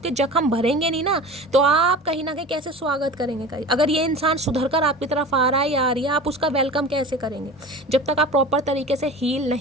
जख्म भरेंगे नहीं ना, तो आप कहीं ना कहीं कैसे स्वागत करेंगे कहीं, अगर ये इंसान सुधर कर आपकी तरफ आ रहा है या आ रही है, आप उसका वेलकम कैसे करेंगे जब तक आप प्रॉपर तरीके से हील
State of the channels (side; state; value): both; normal; correlation 0.35